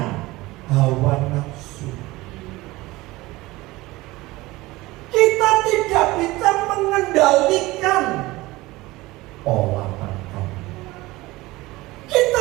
hawa nafsu. mengendalikan pola makan. Kita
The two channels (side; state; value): left; quieter; 19.9 dB